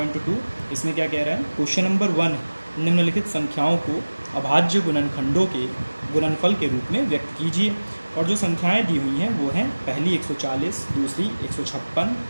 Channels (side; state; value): both; inverted; correlation -1.00